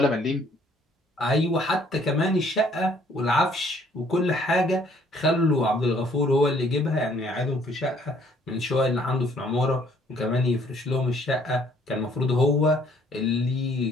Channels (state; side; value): normal; both; correlation 0.62